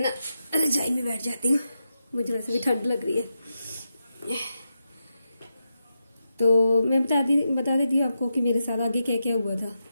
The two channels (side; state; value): both; inverted; correlation -0.87